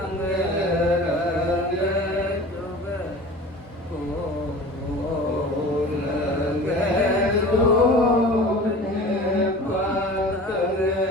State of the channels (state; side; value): normal; both; correlation 0.39